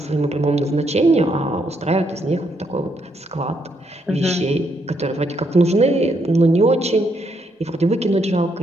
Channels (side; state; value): both; normal; correlation 0.75